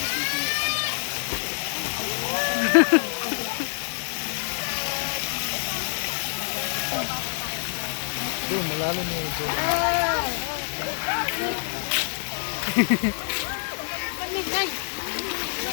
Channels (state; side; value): silent; right; digital silence